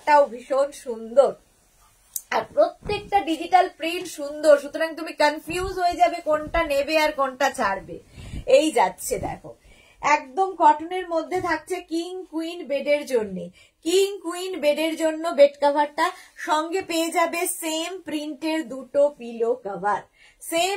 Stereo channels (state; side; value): identical; both; correlation 1.00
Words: ভীষণ সুন্দর, আর প্রত্যেকটা ডিজিটাল প্রিন্ট সুন্দর, সুতরাং তুমি কনফিউজ হয়ে যাবে কোনটা নেবে আর কোনটা ছাড়বে। এই যাচ্ছে দেখো, একদম কটনের মধ্যে থাকছে কিং কুইন বেডের জন্য। কিং কুইন বেডের জন্য বেড কাভারটা, সঙ্গে পেয়ে যাবে সেম প্রিন্টের দুটো পিলো কাভার,